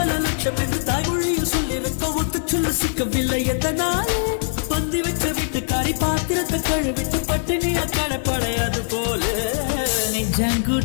லட்சம் என்று தாய்மொழியில் சொல்லியிருக்க ஒத்து சொல்ல சிக்கவில்லை எதனாலே பந்தி வச்ச வீட்டுக்காரி பாத்திரத்தை கழுவிட்டு பட்டினிய கடப்படையாது போல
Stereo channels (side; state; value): right; silent; 56 dB below the other